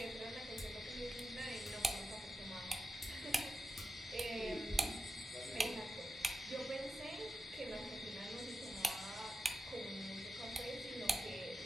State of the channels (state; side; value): normal; both; correlation 0.89